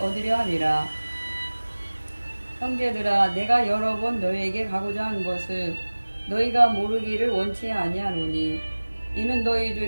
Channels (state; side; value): inverted; both; correlation -1.00